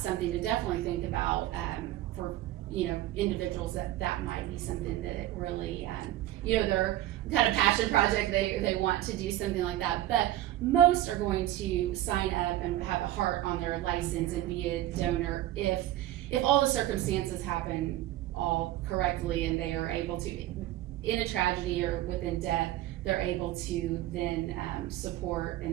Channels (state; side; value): quieter; left; 14.3 dB